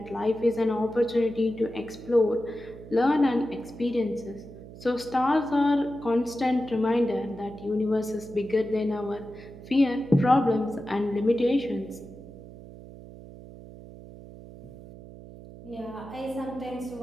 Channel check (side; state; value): right; noise; hum, 16 dB below the sound